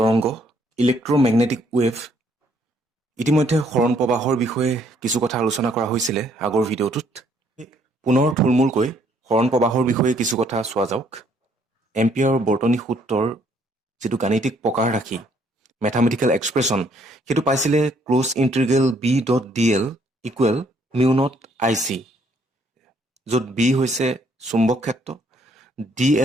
electromagnetic wave ইতিমধ্যে সৰণ প্ৰবাহৰ বিষয়ে কিছু কথা আলোচনা কৰা হৈছিলে আগৰ ভিডিঅ'টোত পুনৰ থুলমূলকৈ সৰণ প্ৰবাহৰ বিষয়ে কিছু কথা চোৱা যাওক এম্পিয়াৰৰ বৰ্তনী সূত্ৰৰ যিটো গাণিতিক প্ৰকাৰ ৰাখি মেথামেটিকেল এক্সপ্ৰেছন সেইটো পাইছিলে close integral B dot D L equal mu naught I C য'ত বি হৈছে চুম্বক ক্ষেত্ৰ ডি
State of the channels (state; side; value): normal; both; correlation 0.66